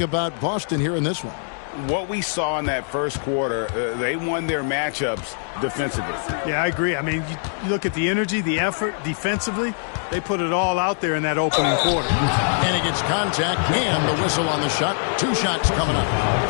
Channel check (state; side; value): silent; right; digital silence